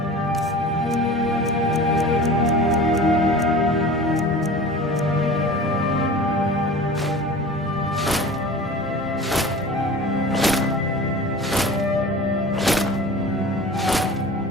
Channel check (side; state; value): both; normal; correlation 0.38